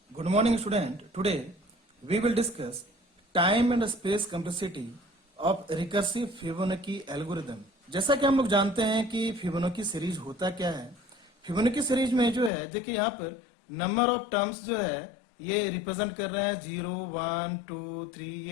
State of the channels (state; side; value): drops out; right; at 12.5 s